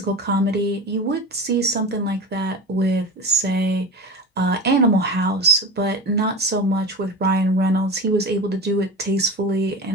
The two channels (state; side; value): normal; both; correlation 0.28